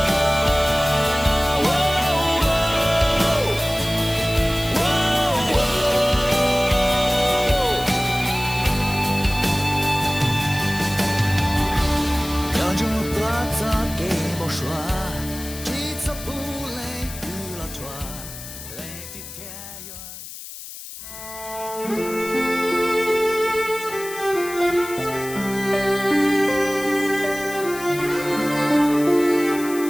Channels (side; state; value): left; noise; hiss, 12 dB below the sound